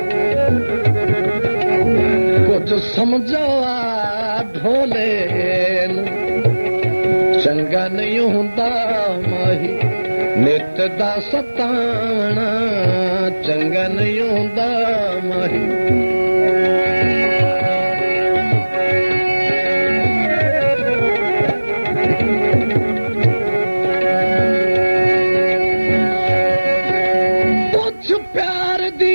ਕੁਝ ਸਮਝਾਵਾ ਢੋਲੇ ਨੂੰ ਚੰਗਾ ਨਹੀਂ ਹੁੰਦਾ ਮਾਹੀ ਨਿਤ ਦਾ ਸਤਾਣਾ ਚੰਗਾ ਨਹੀਂ ਹੁੰਦਾ ਮਾਹੀ ਪੁੱਛ ਪਿਆਰ ਦੀ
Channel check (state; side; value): inverted; both; correlation -1.00